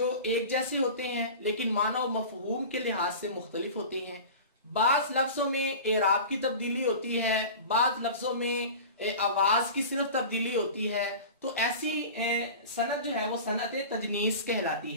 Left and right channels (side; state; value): both; inverted; correlation -0.35